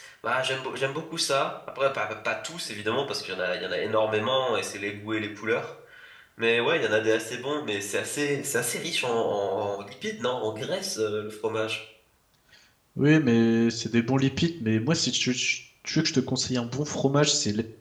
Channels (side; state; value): both; identical; correlation 1.00